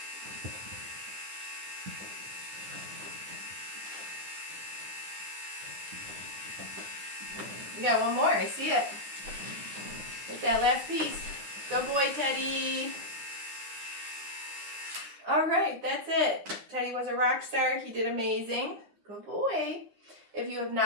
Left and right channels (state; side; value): late; left; 9.8 ms